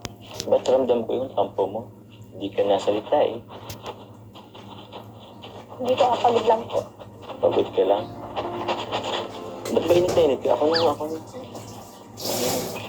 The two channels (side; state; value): both; identical; correlation 1.00